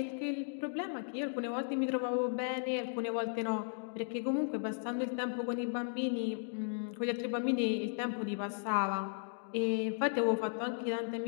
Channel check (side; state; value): right; silent; digital silence